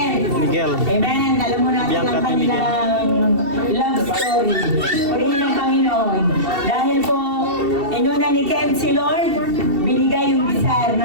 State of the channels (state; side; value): late; left; 2.7 ms